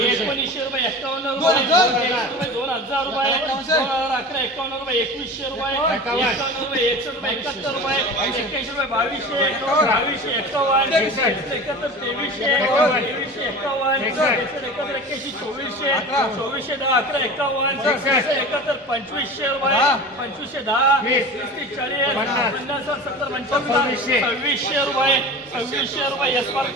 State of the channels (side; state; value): both; normal; correlation 0.34